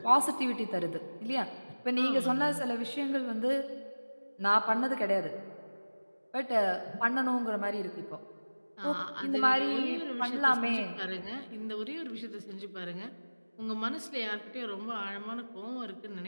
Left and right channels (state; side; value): inverted; both; correlation -1.00